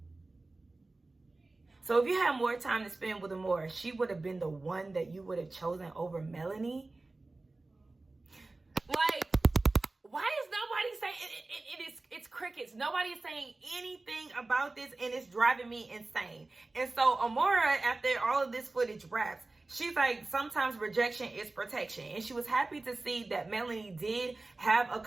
So if you had more time to spend with Amora, she would have been the one that you would have chosen over Melanie. Like, why is nobody saying it's crickets? comments. Nobody is saying anything about this, and it's driving me insane. And so Amara, after all of this footage wraps, she's like, sometimes rejection is protection. And she was happy to see that Melanie did have a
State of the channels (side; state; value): left; quieter; 3.2 dB